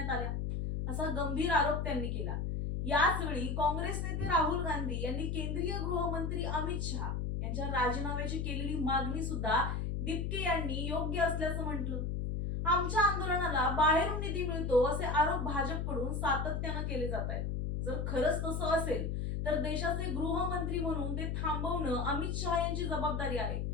आल्या, असा गंभीर आरोप त्यांनी केला. याच वेळी काँग्रेस नेते राहुल गांधी यांनी केंद्रीय गृहमंत्री अमित शहा यांच्या राजीनाम्याची केलेली मागणी सुद्धा दिपके यांनी योग्य असल्याचं म्हटलं. आमच्या आंदोलनाला बाहेरून निधी मिळतो असे आरोप भाजपकडून सातत्यानं केले जात आहेत. जर खरंच तसं असेल तर देशाचे गृहमंत्री म्हणून ते थांबवणं अमित शहा यांची जबाबदारी आहे.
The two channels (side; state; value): left; noise; hum, 1 dB below the sound